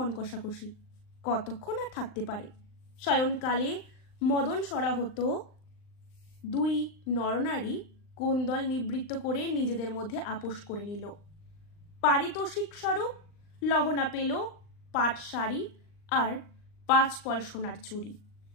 কষাকষি, কতক্ষণ আর থাকতে পারে। শয়নকালে মদন সরাহত দুই নরনারী কোন্দল নিবৃত্ত করে নিজেদের মধ্যে আপোষ করে নিল। পারিতোষিক স্বরূপ লহনা পেল পাট শাড়ি আর 5 পল সোনার চুড়ি,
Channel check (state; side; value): late; right; 39 ms